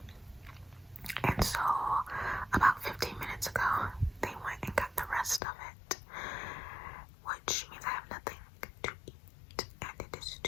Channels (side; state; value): right; drops out; at 5.4 s